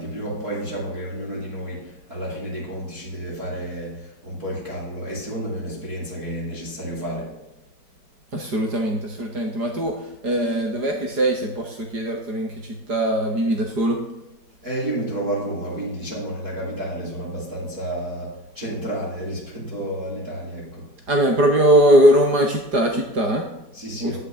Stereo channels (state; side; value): late; left; 4.9 ms